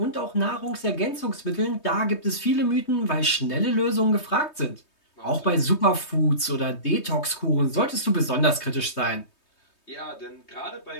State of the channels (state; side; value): late; right; 3.2 ms